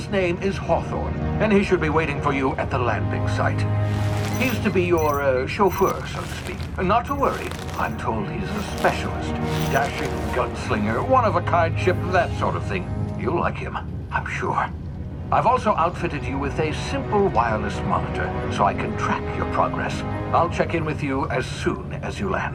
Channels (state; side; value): identical; both; correlation 1.00